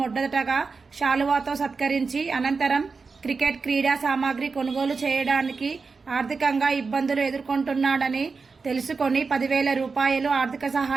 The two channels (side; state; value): left; quieter; 4.6 dB